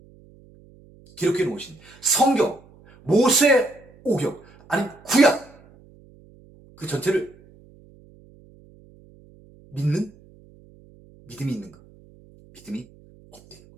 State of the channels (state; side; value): noise; right; hum, 26 dB below the sound